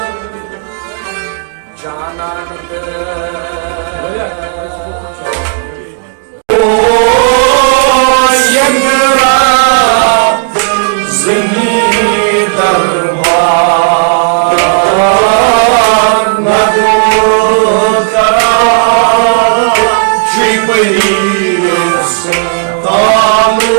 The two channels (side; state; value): left; silent; digital silence